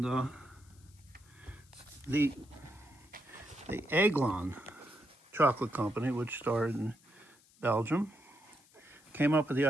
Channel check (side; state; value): left; noise; hiss, 28 dB below the sound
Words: the Aiglon chocolate company, which started in Belgium, came up with the